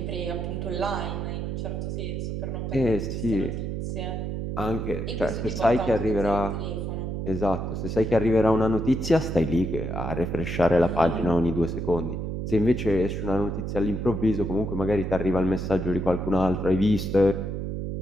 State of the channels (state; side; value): noise; right; hum, 3 dB below the sound